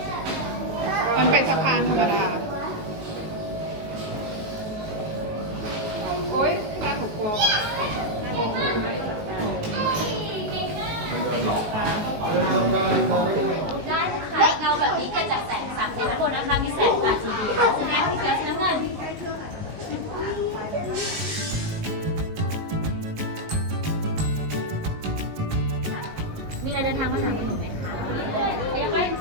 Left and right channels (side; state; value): left; late; 19 ms